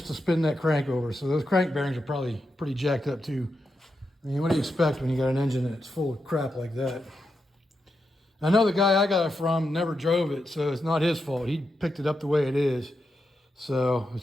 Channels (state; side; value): normal; both; correlation 0.86